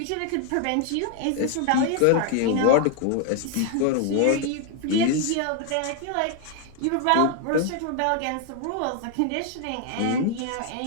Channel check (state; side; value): different; both; correlation 0.00